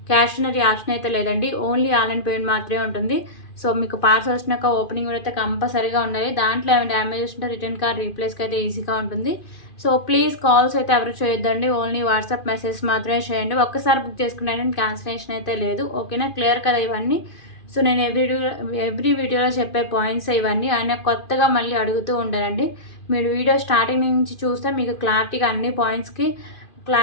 Cash on option అయితే లేదండి, ఓన్లీ ఆన్లైన్ పేమెంట్ మాత్రమే ఉంటుంది. సో మీకు పార్సల్ వచ్చినాక ఓపెనింగ్ అయితే కంపల్సరీగా ఉండాలి. దాంట్లో ఏమైనా డ్యామేజ్ ఉంటే రిటర్న్ కార్డ్ రీప్లేస్కి అయితే ఈజీగా ఉంటుంది. సో ప్లీజ్ కాల్స్ అయితే ఎవరు చేయొద్దండి, ఓన్లీ వాట్సాప్ మెసేజ్ మాత్రమే చేయండి. ఒక్కసారి బుక్ చేసుకున్నాను, క్యాన్సిలేషన్ అయితే లేదు, ఓకేనా? క్లియర్ కదా ఇవన్నీ. సో నేను ఎవ్రీ వీడియోలో చెప్పే పాయింట్స్ ఇవన్నీ. ఆయన కొత్తగా మళ్ళీ అడుగుతూ ఉంటారండి. మీరు వీడియో స్టార్టింగ్ నుంచి చూస్తే మీకు క్లారిటీగా అన్ని పాయింట్స్కి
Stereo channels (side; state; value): right; late; 2.4 ms